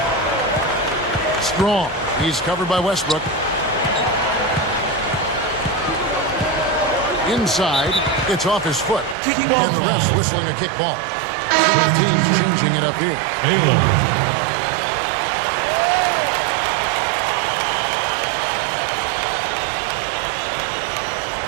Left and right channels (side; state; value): left; drops out; at 9.2 s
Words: Strong. He's covered by Westbrook. Inside, it's off his foot. And the refs whistling a kick ball. Both teams changing it up here. Baylor.